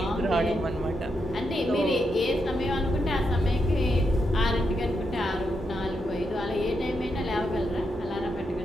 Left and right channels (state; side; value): normal; both; correlation 0.83